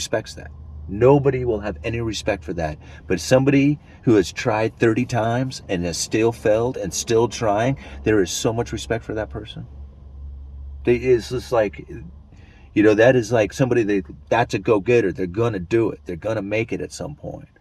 that. Nobody will have any respect for that. But somebody who has tried 30 times and has still failed and still trying, there is so much respect for that person. It's just like, that is like somebody that's a go-getter. They're going to do it. They're going to make it at some point.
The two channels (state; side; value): identical; both; correlation 1.00